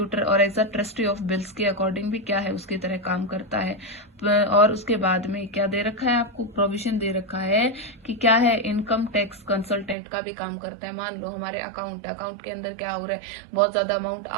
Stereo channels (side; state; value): left; drops out; at 10.0 s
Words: और as a trustee of bills के अकॉर्डिंग भी क्या है, उसकी तरह काम करता है। और उसके बाद में क्या दे रखा है आपको, प्रोविजन दे रखा है कि क्या है, इनकम टैक्स कंसल्टेंट का भी काम करता है। मान लो हमारे अकाउंट के अंदर क्या हो रहा है, बहुत ज्यादा अमाउंट